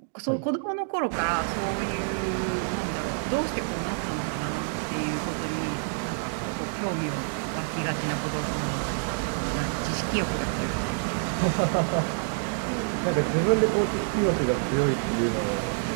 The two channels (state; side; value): silent; left; 60 dB below the other